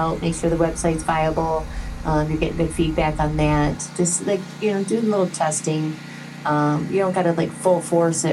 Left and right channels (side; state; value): both; identical; correlation 1.00